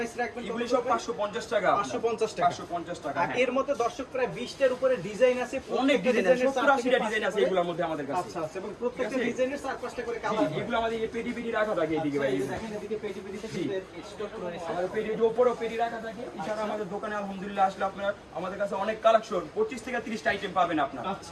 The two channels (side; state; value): both; identical; correlation 1.00